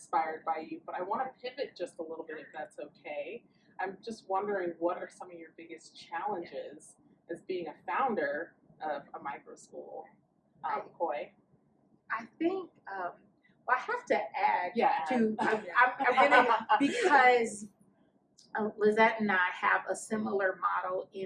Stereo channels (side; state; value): both; identical; correlation 1.00